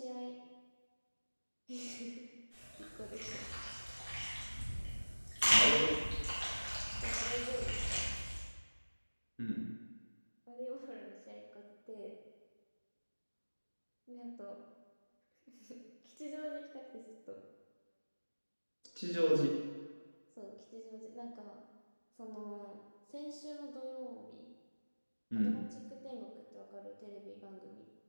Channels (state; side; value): inverted; both; correlation -1.00